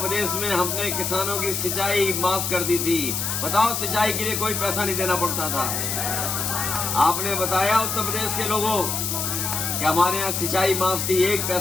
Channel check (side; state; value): left; noise; hiss, 1 dB below the sound